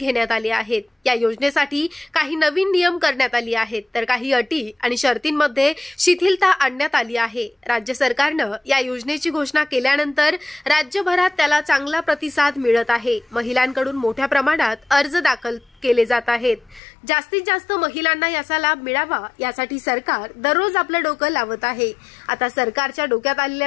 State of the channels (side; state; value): right; drops out; at 16.8 s